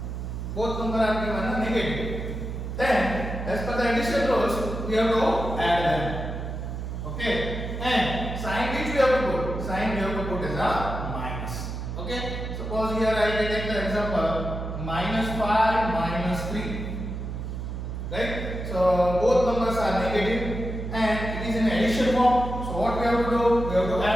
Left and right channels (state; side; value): noise; right; hum, 6 dB below the sound